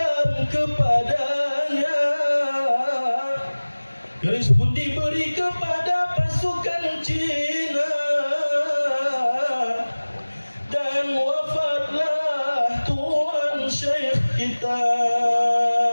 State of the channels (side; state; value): both; inverted; correlation -1.00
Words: kepadanya. Keris pun diberi kepada pasukan Cina, dan wafatlah Tuan Syekh kita.